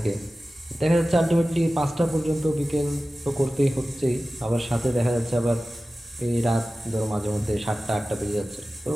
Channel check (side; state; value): both; normal; correlation 0.96